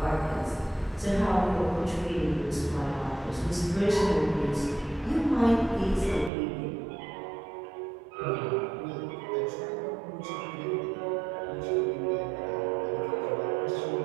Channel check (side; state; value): left; drops out; at 6.3 s